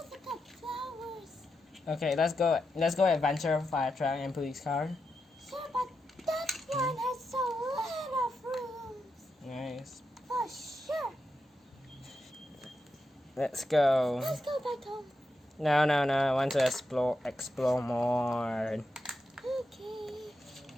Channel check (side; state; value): both; normal; correlation 0.87